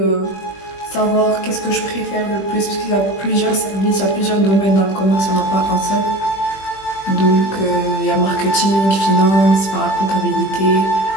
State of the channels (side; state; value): right; late; 20 ms